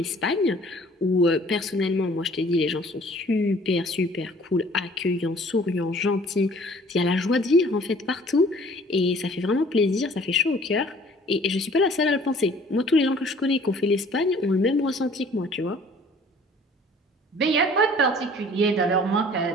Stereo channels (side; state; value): both; normal; correlation 0.53